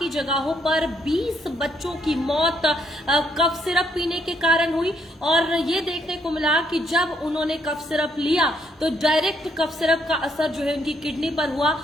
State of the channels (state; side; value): normal; both; correlation 0.72